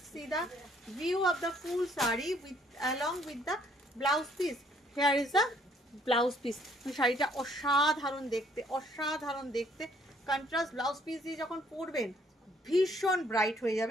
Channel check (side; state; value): both; normal; correlation 0.64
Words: see the view of the full sari with along with the blouse piece. Hair is the blouse piece. শাড়িটা অসাধারণ দেখতে, অসাধারণ দেখতে। কন্ট্রাস্ট ব্লাউজ পিস দিয়ে যখন পরবেন ভীষণ ব্রাইট হয়ে